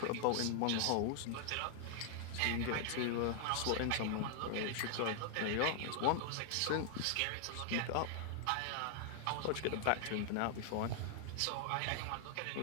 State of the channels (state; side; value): different; both; correlation 0.00